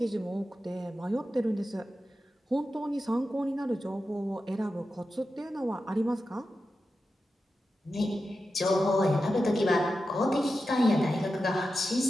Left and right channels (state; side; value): normal; both; correlation 0.91